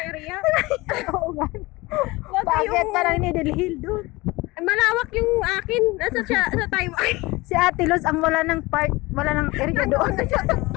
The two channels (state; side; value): quieter; right; 21.8 dB